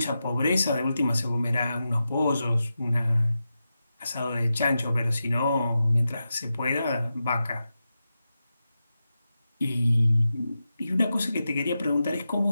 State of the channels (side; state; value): both; inverted; correlation -0.90